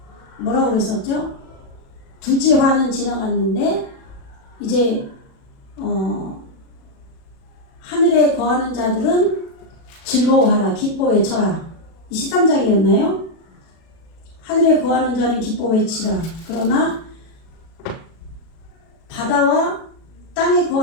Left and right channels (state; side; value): late; right; 37 ms